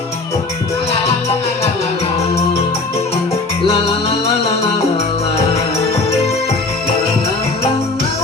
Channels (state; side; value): quieter; right; 3.4 dB